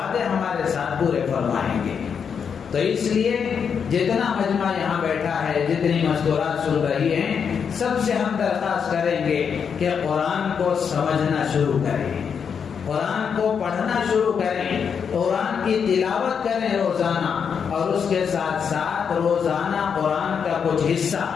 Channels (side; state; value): right; quieter; 6.8 dB